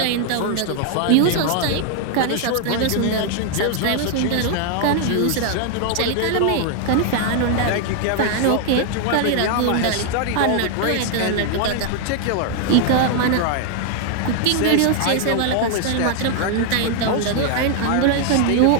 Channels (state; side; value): different; both; correlation 0.00